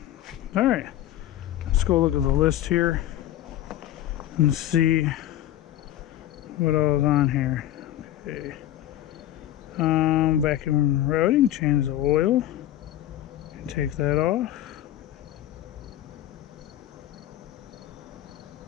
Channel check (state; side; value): quieter; right; 13.0 dB